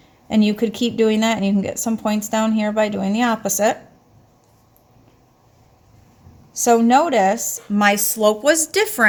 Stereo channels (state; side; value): identical; both; correlation 1.00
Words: And you could keep doing that, and you can get some points down here by doing the opposite. So notice my slope was